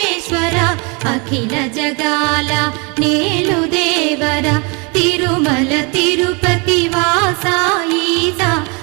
అఖిల జగాల నేలు దేవర తిరుమల తిరుపతి వాస ఈస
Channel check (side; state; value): left; quieter; 31.6 dB